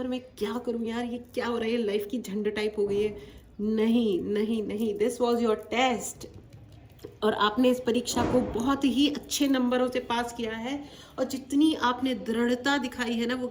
मैं क्या करूँ, यार ये क्या हो रहा है, लाइफ की झंड टाइप हो गई है, नहीं नहीं नहीं, दिस वॉज योर टेस्ट। और आपने इस परीक्षा को बहुत ही अच्छे नंबरों से पास किया है। और जितनी आपने दृढ़ता दिखाई है ना, वो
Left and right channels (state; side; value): identical; both; correlation 1.00